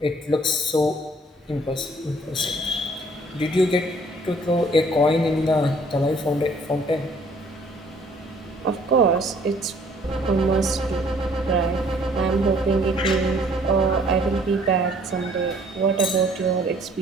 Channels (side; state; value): both; normal; correlation 0.59